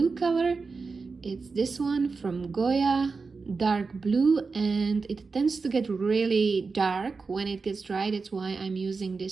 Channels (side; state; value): left; quieter; 4.5 dB